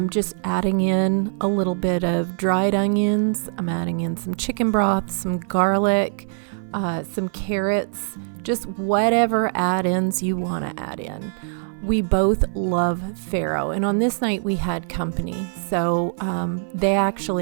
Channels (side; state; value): left; silent; 60 dB below the other